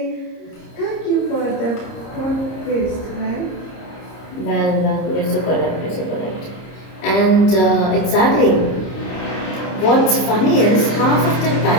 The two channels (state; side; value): late; right; 30 ms